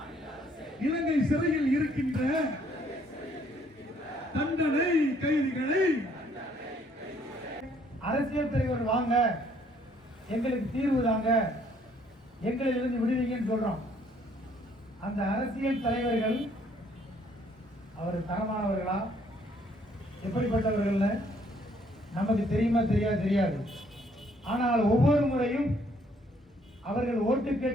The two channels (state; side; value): normal; both; correlation 0.65